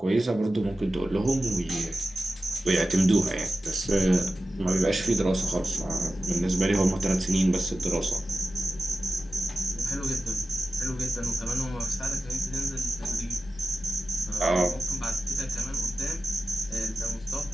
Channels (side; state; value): both; normal; correlation 0.92